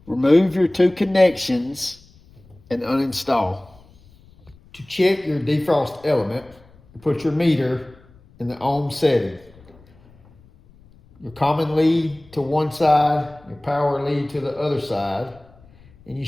Remove your two connections and uninstall. To check your defrost element, put your meter in the ohm setting. Your common lead to one side, your power lead to the other side, and you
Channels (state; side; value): noise; left; rumble, 27 dB below the sound